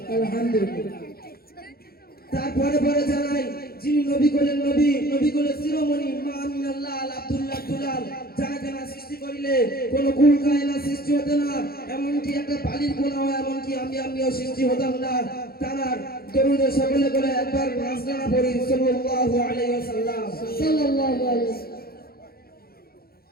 আলহামদুলিল্লাহ। তারপরে পরে জানাই, যিনি নবী কোলের নবী, নবী কোলের শিরোমণি, মা আমিনাল্লাহ আল আব্দুল্লাহ দুলাল, যারা জানা সৃষ্টি করিলে কোনো কুল কায়না সৃষ্টি হতে না, এমনকি একটা পালির গুণা হয়, এমনকি আমিও সৃষ্টি হতাম না। তার দরুদে সকলে করে একবার নাজরানা পড়ি সাল্লাল্লাহু আলাইহি ওয়াসাল্লাম। সাল্লাল্লাহু আলাইহি ওয়াসাল্লাম।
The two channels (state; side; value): late; right; 0.44 ms